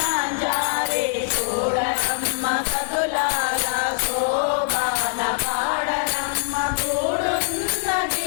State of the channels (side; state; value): right; silent; digital silence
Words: జారే చూడమ్మ సదులాగా శోభాన పాడరమ్మ